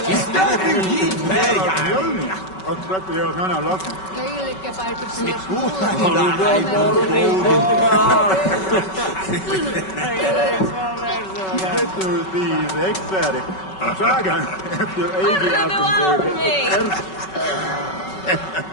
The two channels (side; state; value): right; late; 5.3 ms